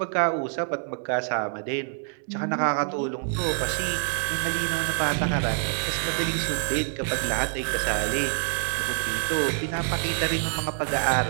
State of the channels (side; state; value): left; silent; 61 dB below the other